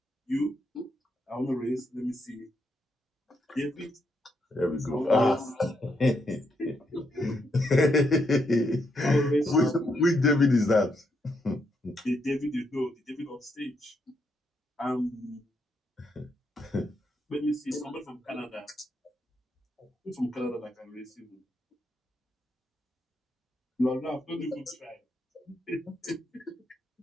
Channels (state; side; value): normal; both; correlation 0.79